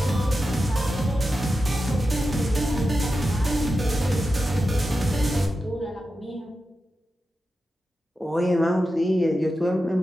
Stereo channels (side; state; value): both; normal; correlation 0.91